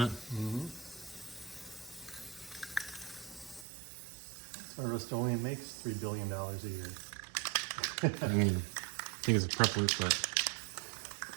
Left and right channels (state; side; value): drops out; left; at 3.7 s